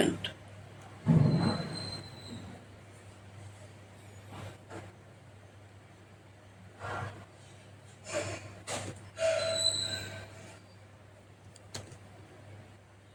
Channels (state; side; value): identical; both; correlation 1.00